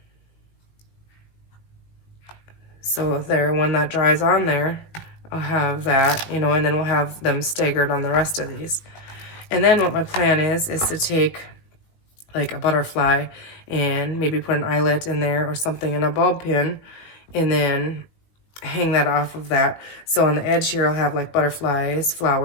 So there, when that dries on there, I'll have that, and then we'll have them staggered on the rest of these. And then what my plan is to take like a butterfly and maybe put an eyelet in there or something in a bulb pin, and then hang that off of that. So on the edge here, I'll have like butterflies,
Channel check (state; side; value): late; right; 19 ms